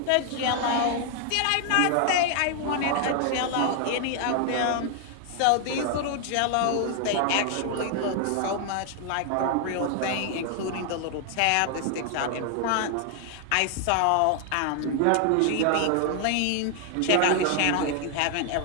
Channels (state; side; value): different; both; correlation 0.00